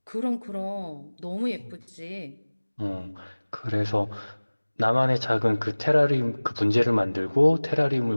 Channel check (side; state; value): both; inverted; correlation -1.00